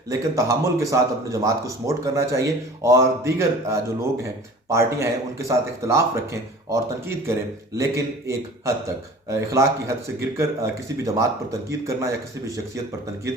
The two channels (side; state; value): both; normal; correlation 0.44